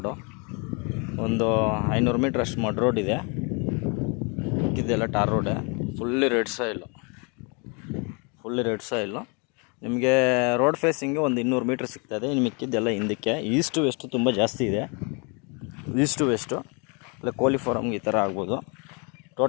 ಒಂದು 500 ಮೀಟ್ರ್ ಅಷ್ಟು ಮಡ್ ರೋಡ್ ಇದೆ. ಇದೆಲ್ಲ ಟಾರ್ ರೋಡೆ, ಫುಲ್ಲಿ ರೆಡ್ ಸಾಯಿಲು. ನಿಮಗೆ ರೋಡ್ ಫೇಸಿಂಗ್ಗೆ ಒಂದು 200 ಮೀಟ್ರ್ ಸಿಗ್ತದೆ. ಇನ್ನು ಮಿಕ್ಕಿದ್ದೆಲ್ಲ ಹಿಂದಕ್ಕೆ. ಈಸ್ಟು ವೆಸ್ಟು ತುಂಬ ಜಾಸ್ತಿ ಇದೆ. ಈಸ್ಟು ವೆಸ್ಟು ಇಲ್ಲ ಕೋಳಿ ಫಾರಮ್ಗೆ ಈ ಥರ ಆಗ್ಬೋದು.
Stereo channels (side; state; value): right; quieter; 33.3 dB